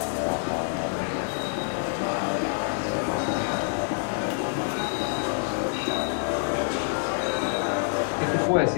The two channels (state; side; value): silent; right; 60 dB below the other